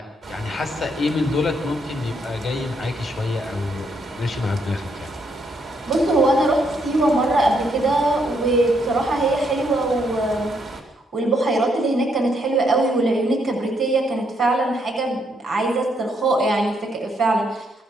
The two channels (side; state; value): both; normal; correlation 0.74